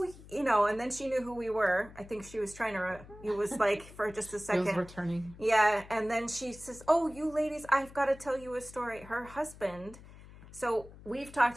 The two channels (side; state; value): left; noise; hum, 19 dB below the sound